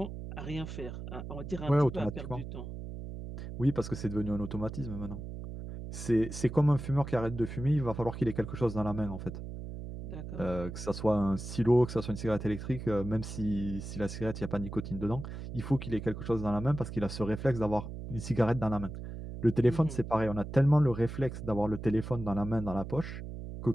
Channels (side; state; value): right; noise; hum, 9 dB below the sound